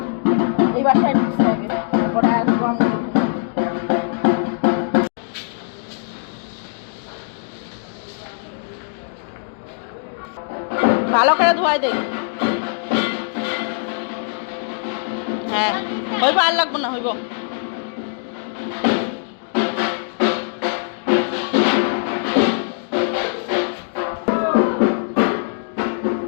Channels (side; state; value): right; silent; digital silence